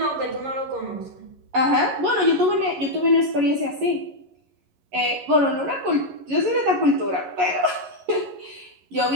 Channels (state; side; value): late; left; 11 ms